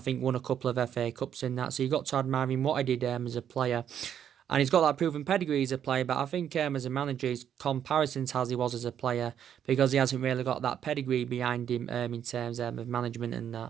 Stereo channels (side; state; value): left; quieter; 9.3 dB